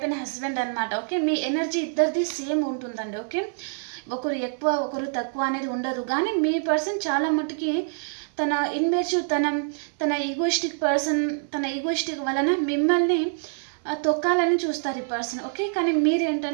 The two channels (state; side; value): silent; left; digital silence